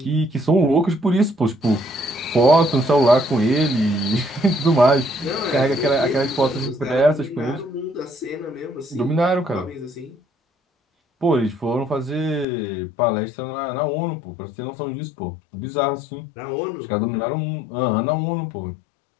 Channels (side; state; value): right; drops out; at 12.5 s